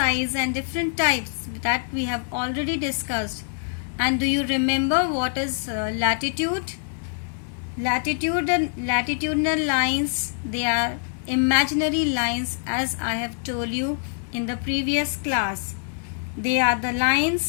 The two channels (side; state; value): right; silent; digital silence